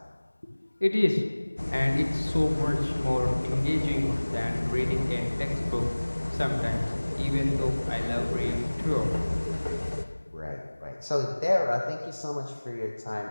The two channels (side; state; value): both; inverted; correlation -1.00